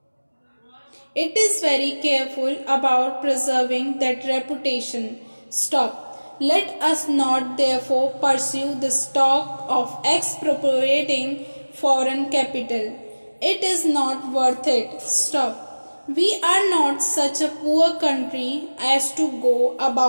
It is very careful about preserving that reputation. Stop. Let us not therefore pursue the talk of expropriating foreign capital. It is not worth it. Stop. We are not such a poor country as to go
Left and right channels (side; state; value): both; inverted; correlation -1.00